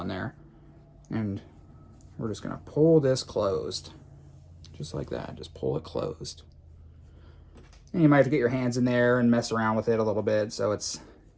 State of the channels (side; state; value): both; identical; correlation 1.00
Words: there. And we're just going to pull this closed. Just like that. Just pull it closed. And you might have to get your hands in there and mess around with it a little bit so it's